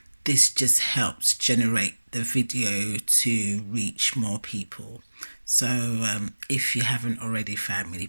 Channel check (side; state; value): both; inverted; correlation -1.00